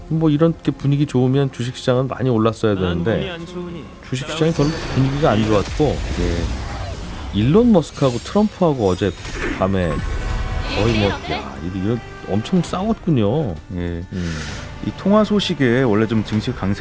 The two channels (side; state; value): both; identical; correlation 1.00